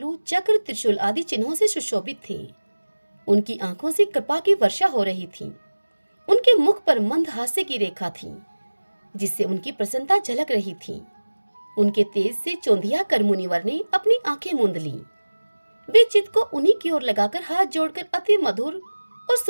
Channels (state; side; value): inverted; both; correlation -1.00